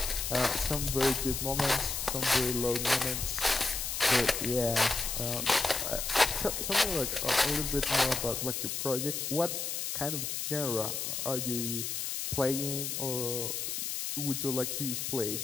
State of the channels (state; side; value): noise; left; hiss, 2 dB below the sound